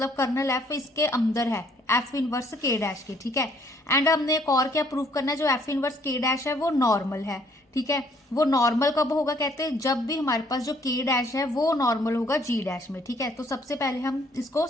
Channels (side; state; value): both; normal; correlation 0.64